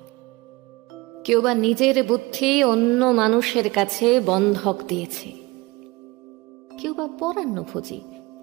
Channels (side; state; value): left; quieter; 22.6 dB